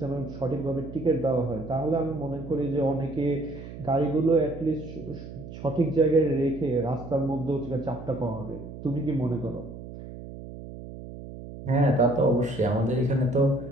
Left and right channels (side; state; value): right; noise; hum, 12 dB below the sound